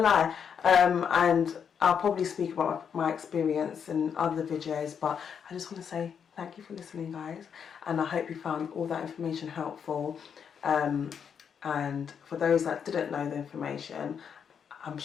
And I'll probably speak about my experience in other videos, but I just want to say thank you for listening, guys, and I hope you found all that information helpful. And for those that didn't know the information, I'm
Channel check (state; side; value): quieter; right; 7.3 dB